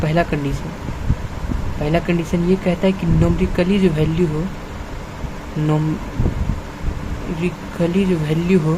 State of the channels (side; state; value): both; identical; correlation 1.00